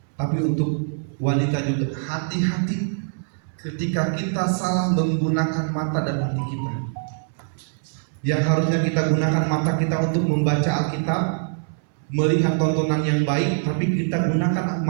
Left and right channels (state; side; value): silent; left; 63 dB below the other